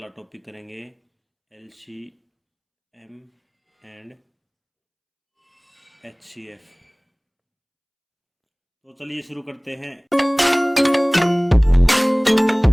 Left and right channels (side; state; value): both; identical; correlation 1.00